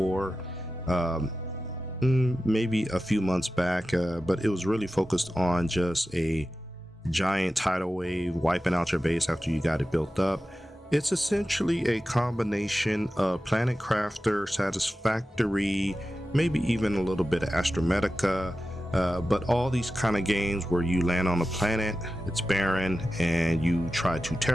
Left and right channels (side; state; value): both; normal; correlation 0.93